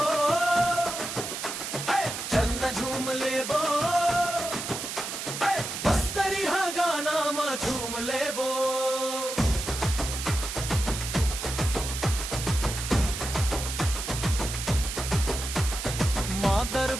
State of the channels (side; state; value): right; noise; hiss, 6 dB below the sound